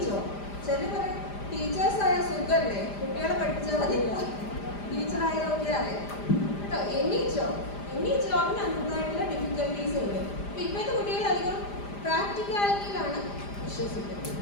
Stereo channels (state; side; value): late; right; 5.0 ms